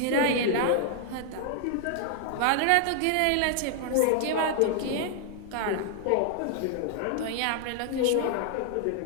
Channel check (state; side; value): different; both; correlation 0.00